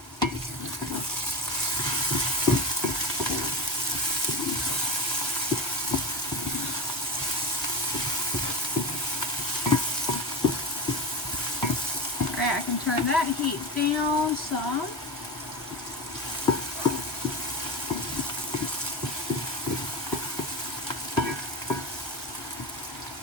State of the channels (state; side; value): normal; both; correlation 0.21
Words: I can turn that heat down some.